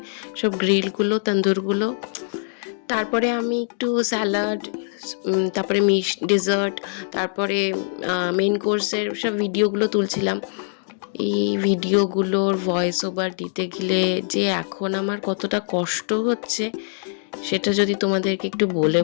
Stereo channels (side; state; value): right; silent; digital silence